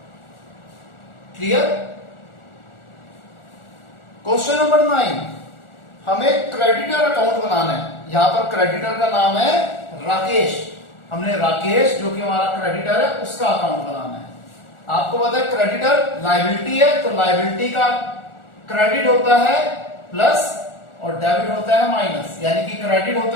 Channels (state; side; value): late; right; 1.4 ms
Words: Clear? Question number 9, हमें क्रेडिटर अकाउंट बनाना है। यहां पर क्रेडिटर का नाम है राकेश, हमने राकेश जो कि हमारा क्रेडिटर है उसका अकाउंट बनाना है। आपको पता है क्रेडिटर लायबिलिटी है, तो लायबिलिटी का क्रेडिट होता है प्लस और डेबिट होता है माइनस, यानी कि क्रेडिट